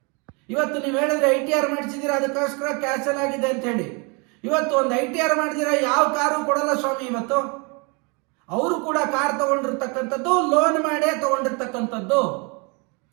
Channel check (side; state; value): left; quieter; 32.0 dB